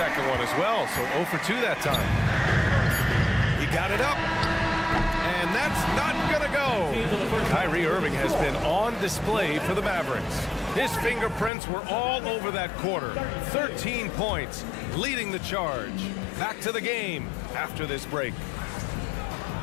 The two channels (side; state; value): right; drops out; at 11.5 s